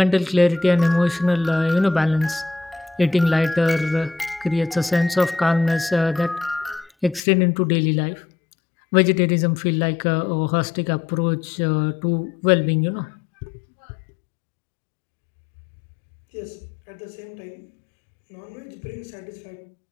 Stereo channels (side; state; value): right; drops out; at 7.2 s